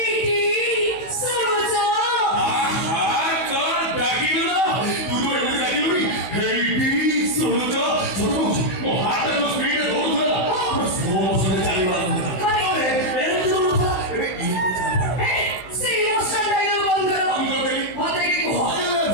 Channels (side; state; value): right; late; 16 ms